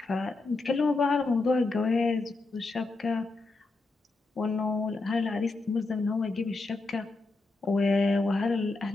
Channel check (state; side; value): quieter; right; 3.5 dB